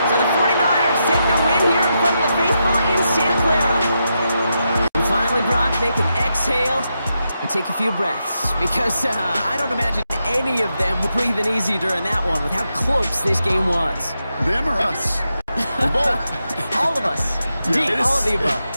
So the 49ers take the win here in front of the faithful in Santa Clara. And finally, Brock, they can exhale and take a few breaths. Because I don't imagine any of them were breathing easy during that one with how close this game was. Them or us? We're both. All of us. Yeah, Indeed, all of the above.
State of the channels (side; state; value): both; inverted; correlation -0.85